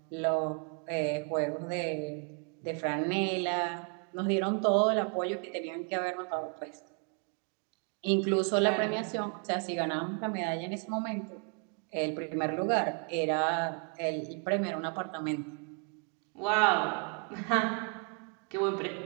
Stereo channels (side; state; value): left; quieter; 39.4 dB